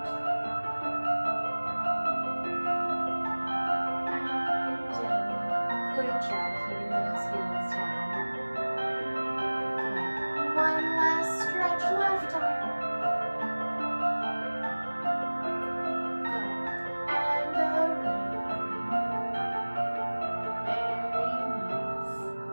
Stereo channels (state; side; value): inverted; both; correlation -1.00